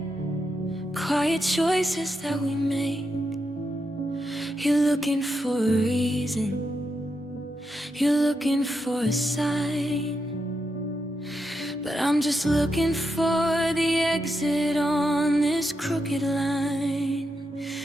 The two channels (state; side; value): normal; both; correlation 0.85